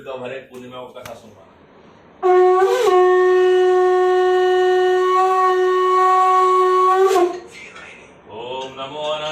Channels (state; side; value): identical; both; correlation 1.00